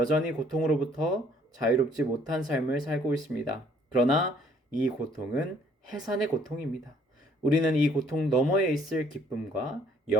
고통으로부터 자유롭지 못한 삶을 살고 있습니다. 그러나 이 고통은 해산의 고통입니다. 우리는 이 고통 너머에 있을 기쁨과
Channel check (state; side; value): normal; both; correlation 0.62